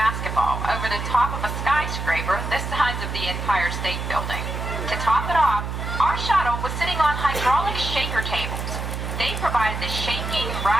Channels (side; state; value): right; noise; hum, 4 dB below the sound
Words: over the top of a skyscraper the size of the Empire State Building. To top it off, our shuttle was sitting on hydraulic shaker tables. They provided the shaking,